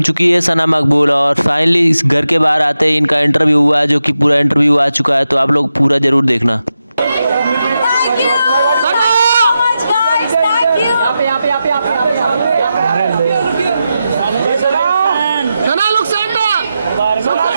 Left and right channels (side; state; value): both; inverted; correlation -0.89